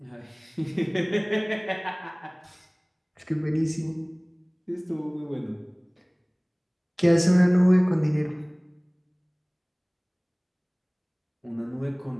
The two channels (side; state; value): both; identical; correlation 1.00